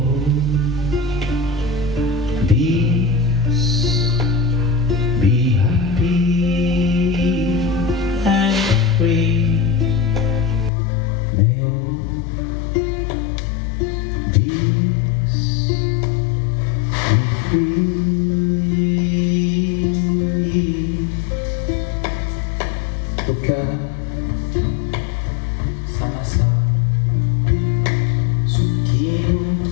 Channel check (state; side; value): drops out; right; at 10.7 s